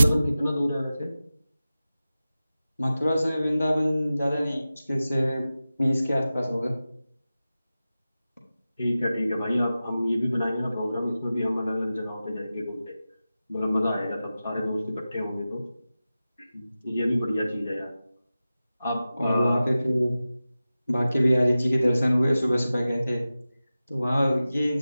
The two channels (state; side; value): inverted; both; correlation -0.95